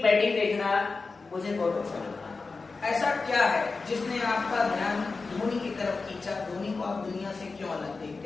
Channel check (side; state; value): right; quieter; 4.1 dB